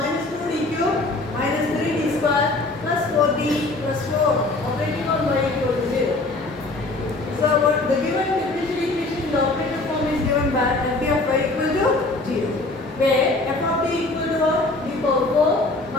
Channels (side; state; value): right; quieter; 3.1 dB